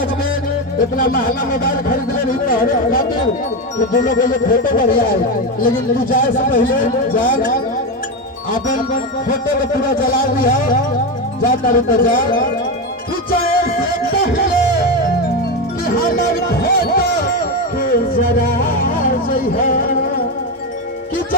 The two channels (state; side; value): normal; both; correlation 0.13